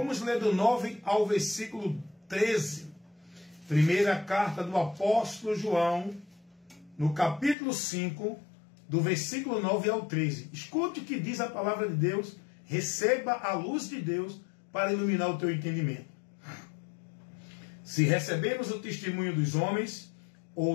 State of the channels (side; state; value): right; drops out; at 7.6 s